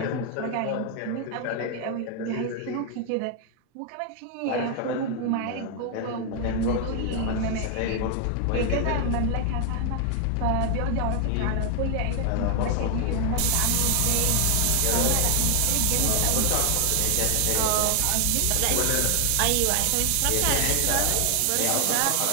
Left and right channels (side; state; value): both; different; correlation 0.00